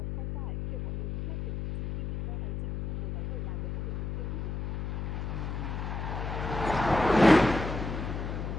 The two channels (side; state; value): left; noise; hum, 3 dB below the sound